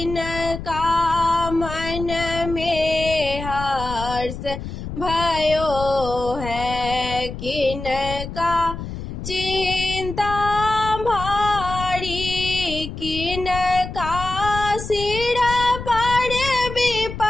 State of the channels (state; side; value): noise; left; rumble, 8 dB below the sound